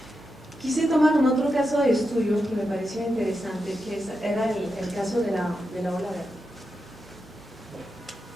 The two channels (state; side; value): normal; both; correlation 0.87